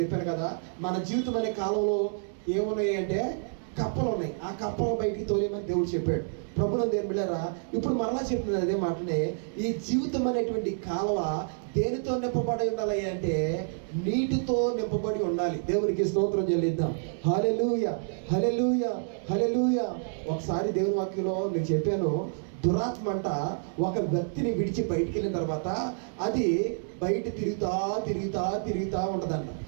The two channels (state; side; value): silent; left; digital silence